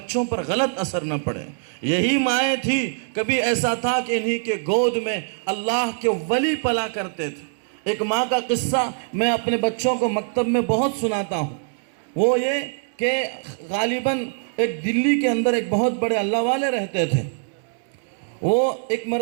پر غلط اثر نہ پڑے۔ یہی مائیں تھی، کبھی ایسا تھا کہ انہی کے گود میں اللہ کے ولی پلا کرتے تھے۔ ایک ماں کا قصہ میں اپنے بچوں کو مکتب میں بہت سناتا ہوں، وہ یہ کہ غالباً ایک دلی کے اندر ایک بہت بڑے اللہ والے رہتے تھے۔ وہ ایک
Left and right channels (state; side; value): silent; left; digital silence